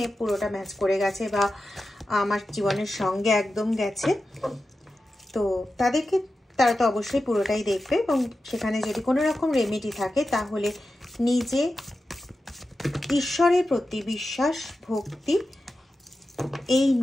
পুরোটা ম্যাচ করে গেছে বা আমার জীবনের সঙ্গে একদম গেছে, তো তারা তো অবশ্যই পুরোটাই দেখবে। এবং সেখানে যদি কোনো রকম রেমেডি থাকে তাহলে নিজে ঈশ্বরের প্রতি বিশ্বাস ভক্তি এই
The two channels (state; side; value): normal; both; correlation 0.92